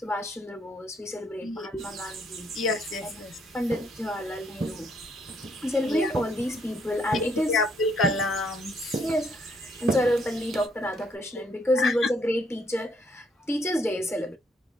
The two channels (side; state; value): both; normal; correlation 0.70